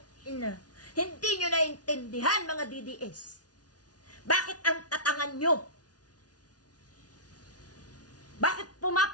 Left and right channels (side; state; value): right; late; 0.69 ms